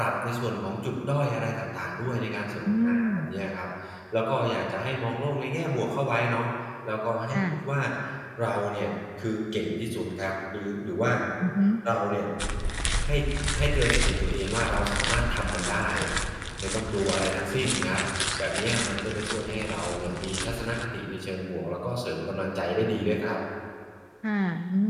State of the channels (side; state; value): both; identical; correlation 1.00